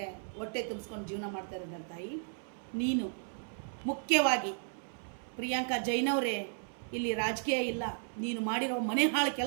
ಹೊಟ್ಟೆ ತುಂಬಿಸ್ಕೊಂಡು ಜೀವನ ಮಾಡ್ತಾ ಇದ್ದಾರೆ ತಾಯಿ. ನೀನು ಮುಖ್ಯವಾಗಿ ಪ್ರಿಯಾಂಕಾ ಜೈನವರೇ, ಇಲ್ಲಿ ರಾಜಕೀಯ ಇಲ್ಲ. ನೀನು ಮಾಡಿರೋ ಮನೆ ಹಾಳು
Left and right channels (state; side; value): silent; left; 55 dB below the other